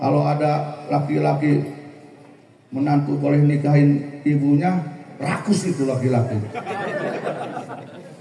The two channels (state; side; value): identical; both; correlation 1.00